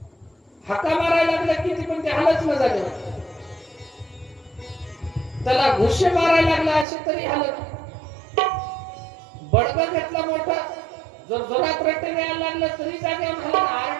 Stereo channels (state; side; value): drops out; left; at 6.9 s